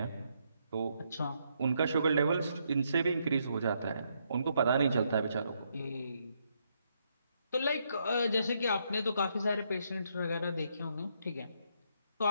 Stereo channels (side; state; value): both; inverted; correlation -0.76